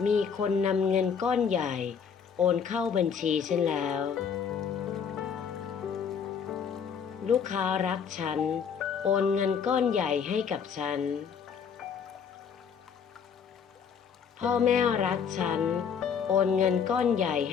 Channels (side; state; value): right; quieter; 6.9 dB